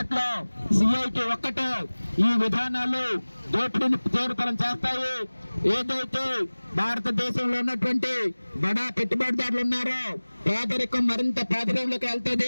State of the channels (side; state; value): both; inverted; correlation -1.00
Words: సిఐటి ఒక్కటే ఈ విధానాలు దోపిడీని తీవ్రతరం చేస్తాయి, ఏదైతే భారతదేశంలో ఉన్నటువంటి బడా పెట్టుబడిదారులు ఉన్నారో పేదరికం మరింత పేదరికంలోకి